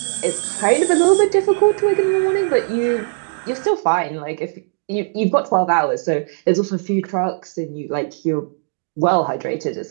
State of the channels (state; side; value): silent; left; 66 dB below the other